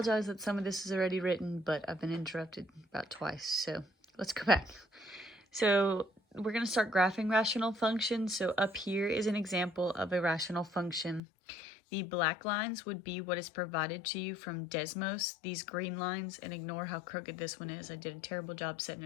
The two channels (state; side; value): drops out; right; at 11.2 s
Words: that some of this is already written, but I've been interrupted about twice, so let's go back. So, we're going to start graphing rational functions. So up here is an example of a rational function. The black lines would be what is provided to you from Desmos. These green lines, and ignore how crooked this one is, I did a terrible job setting